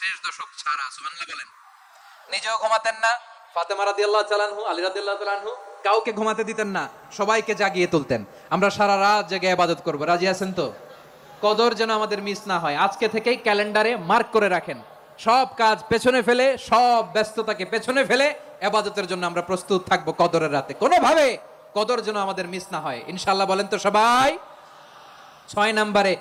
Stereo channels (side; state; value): both; identical; correlation 1.00